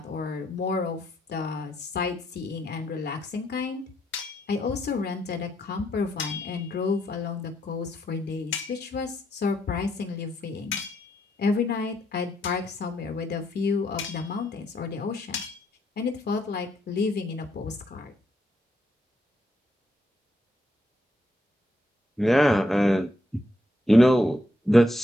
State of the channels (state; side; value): normal; both; correlation 0.76